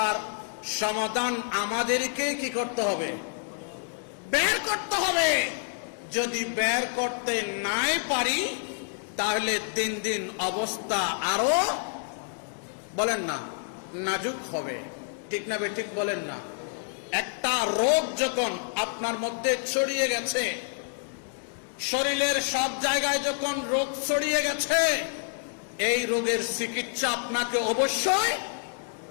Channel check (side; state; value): right; silent; digital silence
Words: সমাধান আমাদেরকে কি করতে হবে? বের করতে হবে। যদি বের করতে নাই পারি, তাহলে দিন দিন অবস্থা আরো বলেন না নাজুক হবে। ঠিক না ঠিক বলেন না? একটা রোগ যখন আপনার মধ্যে ছড়িয়ে গেছে, শরীরের সব জায়গায় যখন রোগ ছড়িয়ে গেছে, এই রোগের চিকিৎসা আপনাকে অবশ্যই